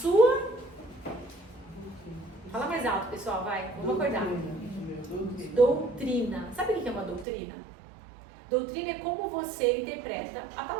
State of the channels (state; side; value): drops out; left; at 7.2 s